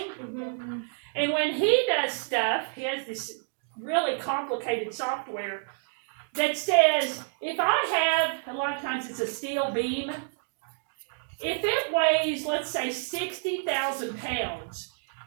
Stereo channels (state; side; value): silent; left; digital silence